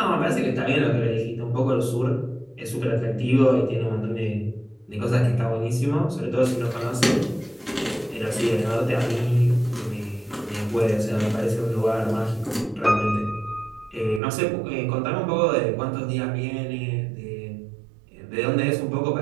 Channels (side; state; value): left; drops out; at 14.2 s